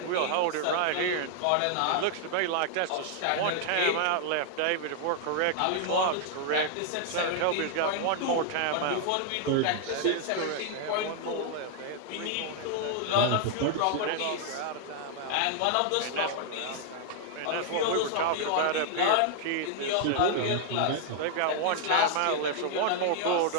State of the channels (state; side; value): different; both; correlation 0.00